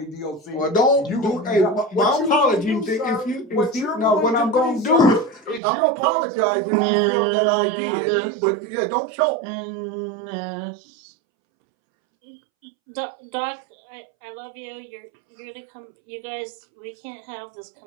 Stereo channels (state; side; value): drops out; left; at 5.6 s